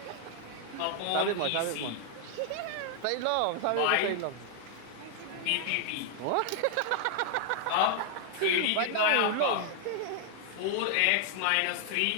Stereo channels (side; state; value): both; different; correlation 0.00